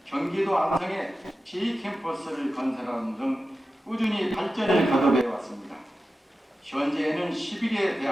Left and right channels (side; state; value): both; normal; correlation 0.93